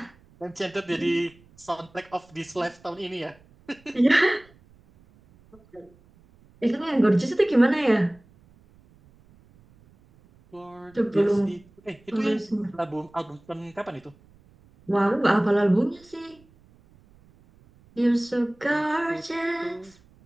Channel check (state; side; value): noise; right; rumble, 29 dB below the sound